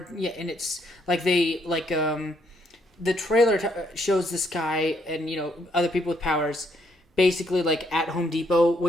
and it's like they the trailer shows this guy and other people with powers, basically like at Home Depot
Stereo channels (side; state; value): both; normal; correlation 0.72